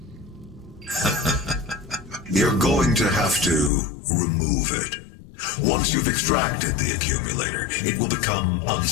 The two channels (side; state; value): right; drops out; at 3.7 s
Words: You're going to have to remove it. Once you've extracted the accumulator, it will become